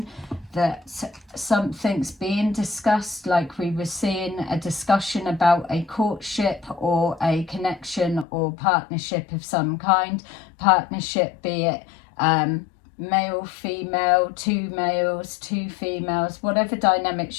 that something's being discussed, like we were seeing a discussion about a courtship or a connection or partnership of some kind. Partnership, be it male, female, two males, two females, whatever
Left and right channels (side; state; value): right; drops out; at 8.2 s